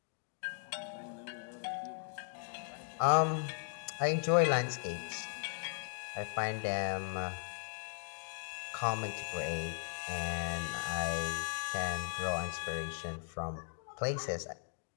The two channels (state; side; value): silent; right; digital silence